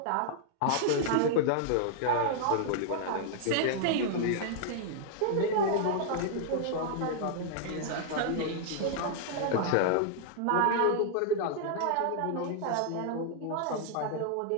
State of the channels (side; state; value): both; different; correlation -0.01